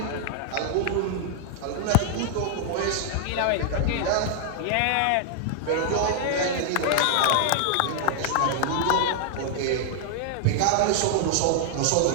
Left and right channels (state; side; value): different; both; correlation 0.00